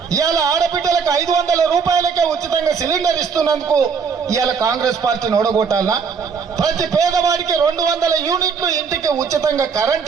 ఇవాళ ఆడబిడ్డలకు 500 రూపాయలకే ఉచితంగా సిలిండర్ ఇస్తున్నందుకు ఇవాళ కాంగ్రెస్ పార్టీని ఓడగొట్టాలనా? ప్రతి పేదవాడికి 200 యూనిట్లు ఇంటికి ఉచితంగా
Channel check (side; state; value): left; quieter; 5.9 dB